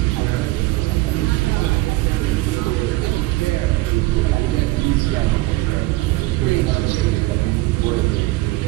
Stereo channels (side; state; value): left; quieter; 19.7 dB